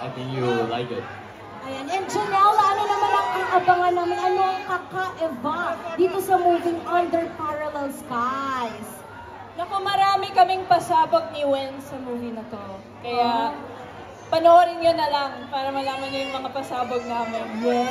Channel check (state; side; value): identical; both; correlation 1.00